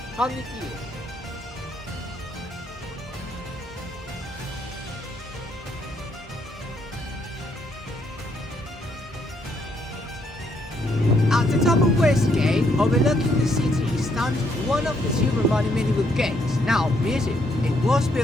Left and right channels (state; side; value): normal; both; correlation 0.72